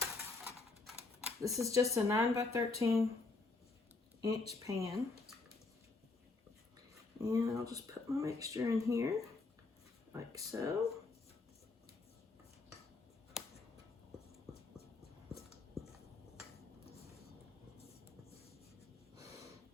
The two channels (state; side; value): quieter; right; 3.7 dB